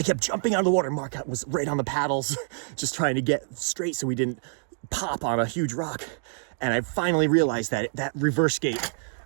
kept jumping out of the water. Mark was right on the paddles just trying to get straight so we didn't pop on a huge rock. And I finally realized that reverse gate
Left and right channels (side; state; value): left; silent; digital silence